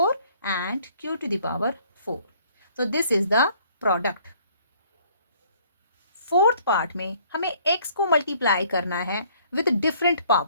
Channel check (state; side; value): inverted; both; correlation -0.59